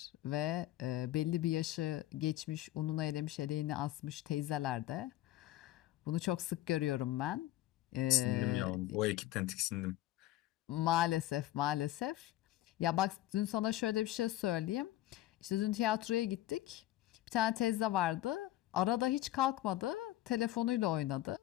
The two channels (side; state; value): right; quieter; 14.9 dB